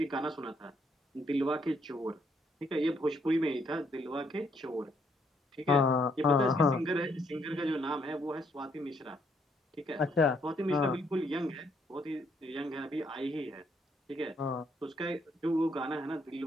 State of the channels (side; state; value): both; normal; correlation 0.71